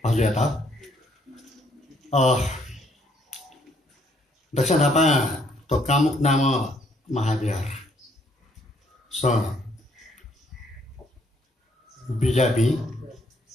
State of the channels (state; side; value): normal; both; correlation 0.68